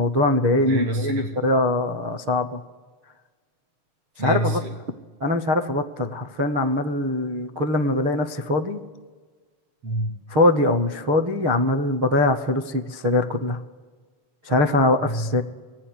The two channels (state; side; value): late; left; 6.6 ms